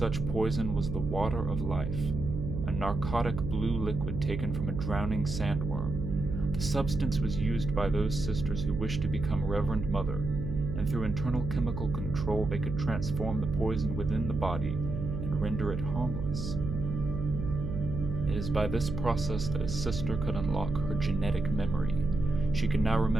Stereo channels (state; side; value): noise; right; hum, 4 dB below the sound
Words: poison was the water of life, a narcotic blue liquid taken from a drowning sandworm. The substance was used by those sisters who wished to become Reverend Mother, and through internal chemical control they could transform the poison within the body and render it harmless. It is by this process that a sister could unlock her genetic memory. She could now